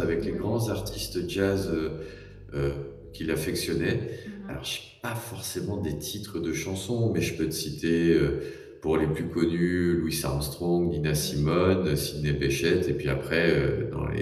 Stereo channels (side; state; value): both; identical; correlation 1.00